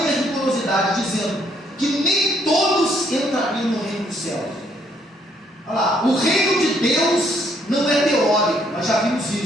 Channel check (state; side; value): normal; both; correlation 0.69